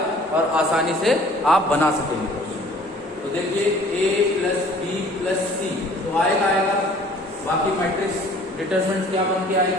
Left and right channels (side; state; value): both; normal; correlation 0.52